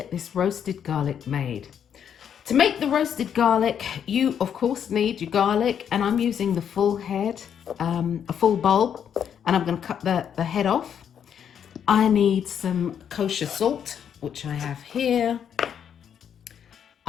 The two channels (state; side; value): quieter; right; 8.4 dB